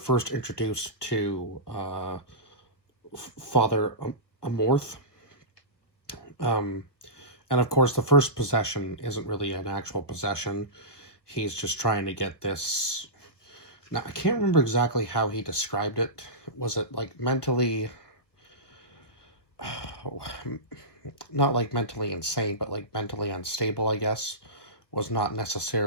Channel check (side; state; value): right; late; 1.5 ms